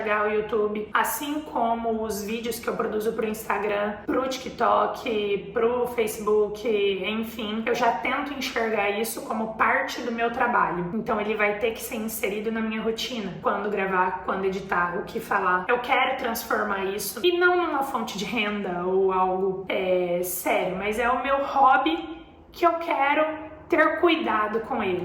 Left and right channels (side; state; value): both; identical; correlation 1.00